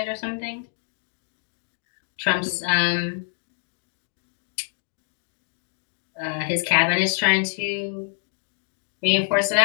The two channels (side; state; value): right; silent; 56 dB below the other